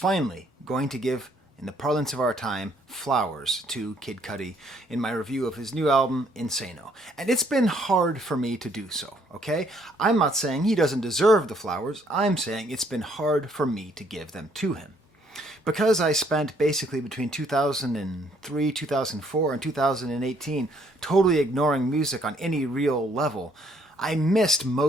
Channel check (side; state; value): both; normal; correlation 0.66